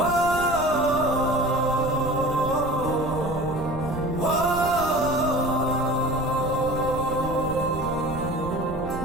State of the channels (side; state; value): right; noise; rumble, 10 dB below the sound